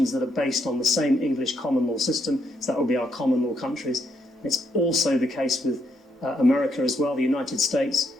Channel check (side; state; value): both; normal; correlation 0.76